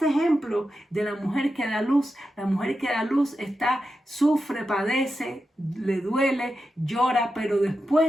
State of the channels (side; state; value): both; normal; correlation 0.89